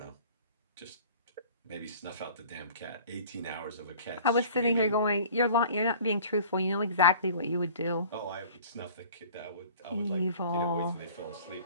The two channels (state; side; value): inverted; both; correlation -0.47